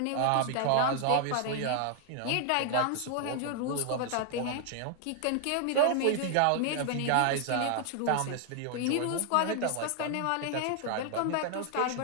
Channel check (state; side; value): different; both; correlation 0.00